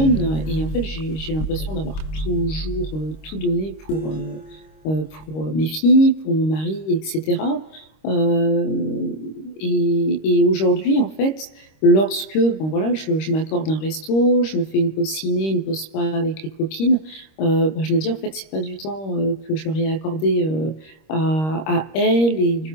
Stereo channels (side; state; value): right; late; 26 ms